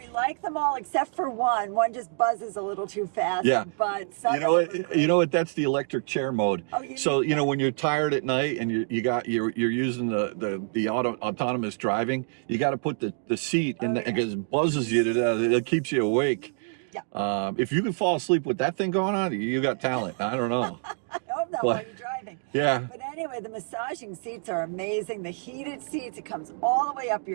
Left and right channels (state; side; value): silent; left; 58 dB below the other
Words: like them all except for one. One just buzzes a little too fast. Yeah. But some you know what? That's the electric chair mode. Oh, so you know when you're tired at night and you're using the autonomous driving, you got to put the seat in because it buzzes you to death. It keeps you awake. Yeah. If you can fall asleep with that thing going on, you got talent. I don't know. I hope not while you're driving. Yeah. But anyway, the massaging seats are amazing. The heated seats, it comes all the way up